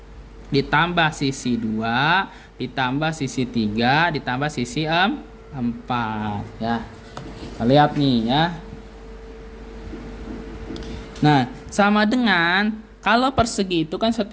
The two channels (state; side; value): identical; both; correlation 1.00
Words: ditambah sisi 2, ditambah sisi 3, ditambah sisi 4 ya. Kita lihat nih ya. Nah, sama dengan kalau persegi itu kan